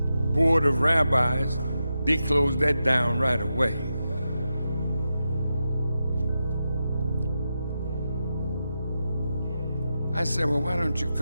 of rabbis, they closed that down right away. I said, well, why don't you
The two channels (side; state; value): both; inverted; correlation -0.88